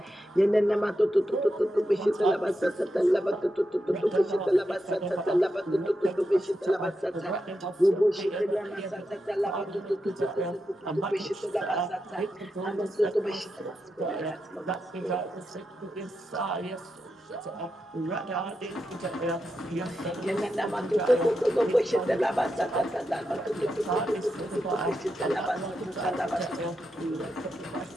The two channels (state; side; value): normal; both; correlation 0.87